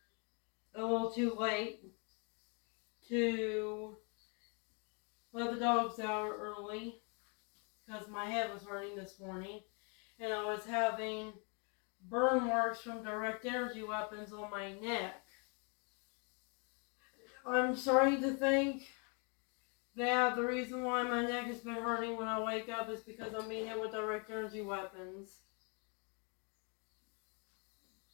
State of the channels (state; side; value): quieter; right; 36.2 dB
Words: a little too late to let the dogs out early because my head was hurting this morning and I was having burn marks from direct energy weapons on my neck. I'm starting to think that the reason why my neck has been hurting when I wake up is because I'm being hit with direct energy weapons.